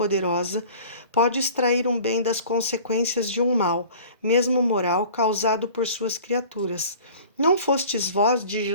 pode extrair um bem das consequências de um mal, mesmo moral, causado por suas criaturas. Não fostes vós, diz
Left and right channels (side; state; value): both; inverted; correlation -0.45